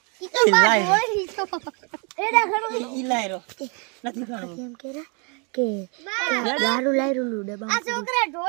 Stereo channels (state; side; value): quieter; left; 34.8 dB